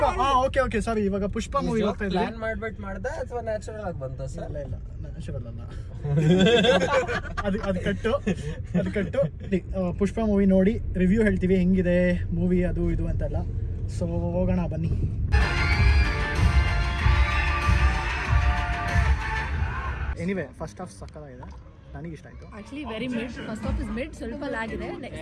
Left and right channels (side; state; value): both; identical; correlation 1.00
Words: ಓಕೆ ಸಾರಿ, ಇವಾಗ ಪುಷ್ಪ ಮೂವಿಗೆ ಹೋಗ್ತಾ ಇದೀವಿ. ಪ್ಲಾನ್ ಮಾಡ್ಬಿಟ್ಟು ಮಾಡ್ದ ಅಥವಾ ನ್ಯಾಚುರಲ್ ಆಗಿ ಬಂತ ಸರ್? ಇಲ್ಲ ನ್ಯಾಚುರಲ್ ಅಲ್ಲ, ಅದು ಕಟ್ಟು. ಪುಷ್ಪ ಮೂವಿ ನೋಡಿ ರಿವ್ಯೂ ಹೇಳ್ತೀವಿ, ಹೆಂಗಿದೆ ಮೂವಿ ಅದು ಇದು ಅಂತೆಲ್ಲ. ಸೊ ಹೋಗೋಣ ಬನ್ನಿ. ಎನಿವೆ ಫಸ್ಟ್ ಹಾಫ್ ಸಕ್ಕತ್ತಾಗಿದೆ, ನನಗೆ ಇಷ್ಟ ಆಯ್ತು. Actually very mid, first half is mid, ಸ್ವಲ್ಪ ಲ್ಯಾಗ್ ಇದೆ.